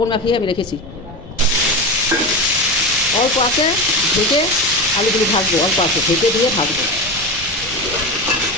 মাখিয়ে আমি রেখেছি। অল্প আছে ঢেকে আলুগুলো ভাজবো, অল্প আছে ঢেকে দিয়ে ভাজবো।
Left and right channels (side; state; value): left; noise; rumble, 17 dB below the sound